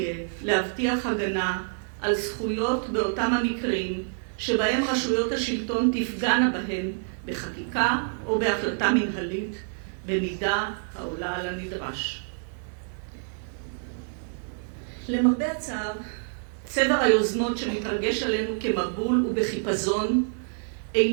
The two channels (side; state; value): left; silent; digital silence